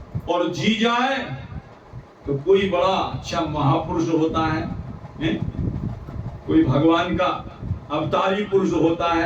और जी जाए तो कोई बड़ा अच्छा महापुरुष होता है, कोई भगवान का अवतारी पुरुष होता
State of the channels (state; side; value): identical; both; correlation 1.00